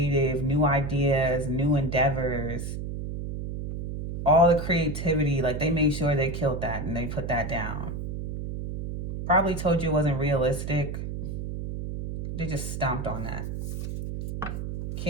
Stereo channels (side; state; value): right; noise; hum, 5 dB below the sound